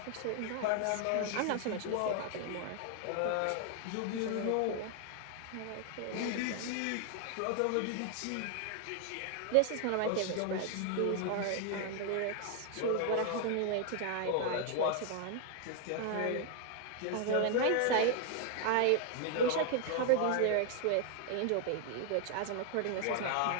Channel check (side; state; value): both; different; correlation 0.00